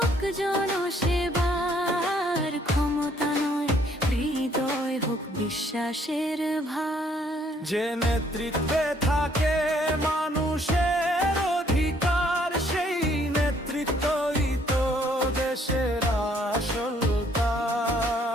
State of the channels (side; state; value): both; normal; correlation 0.65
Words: জনসেবার, ক্ষমতা নয় হৃদয় হোক বিশ্বাসের ভার। যে নেতৃত্বে থাকে মানুষের অধিকার, সেই নেতৃত্বই তো দেশের আসল